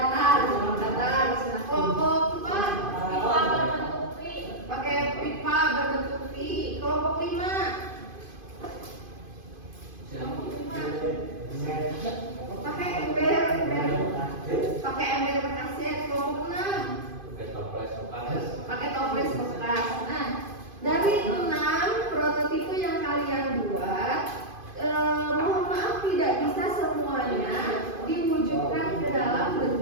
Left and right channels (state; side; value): late; left; 2.5 ms